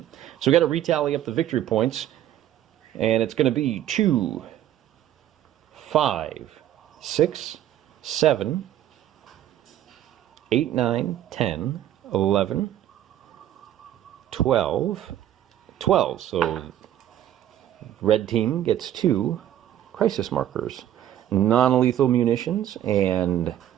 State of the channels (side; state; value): left; quieter; 11.8 dB